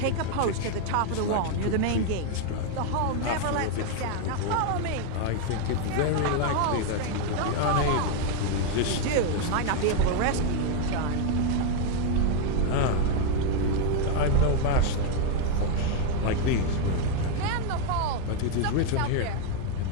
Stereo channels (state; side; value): different; both; correlation 0.01